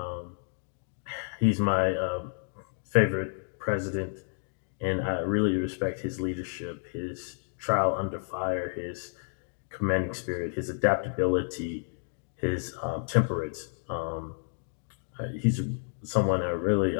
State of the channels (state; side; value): silent; right; digital silence